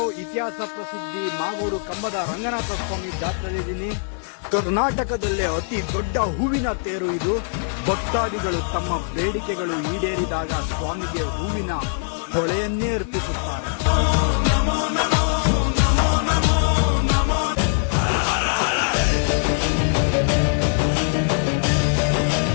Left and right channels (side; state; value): right; silent; 64 dB below the other